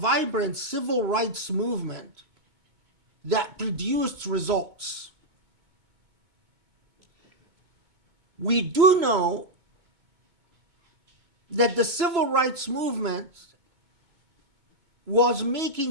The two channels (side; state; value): left; late; 2.2 ms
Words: civil rights movement that produced results. We do know that the civil rights movement was